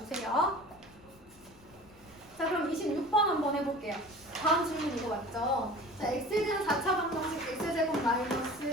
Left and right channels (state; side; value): noise; left; rumble, 27 dB below the sound